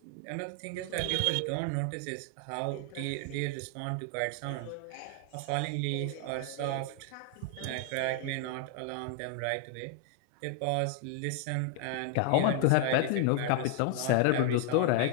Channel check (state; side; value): different; both; correlation 0.00